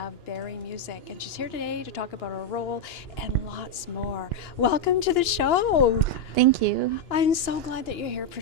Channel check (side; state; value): right; late; 2.9 ms